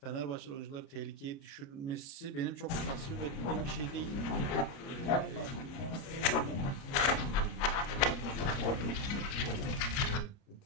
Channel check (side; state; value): right; late; 30 ms